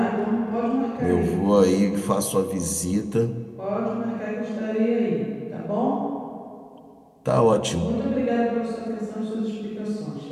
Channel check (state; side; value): identical; both; correlation 1.00